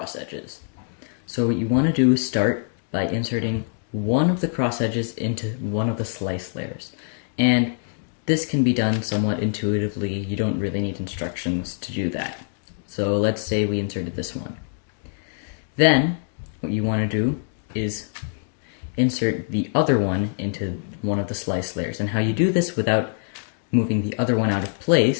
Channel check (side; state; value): right; silent; digital silence